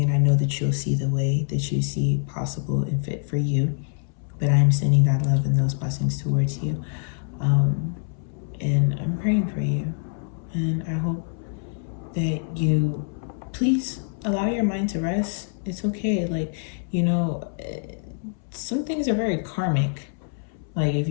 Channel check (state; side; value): silent; right; 62 dB below the other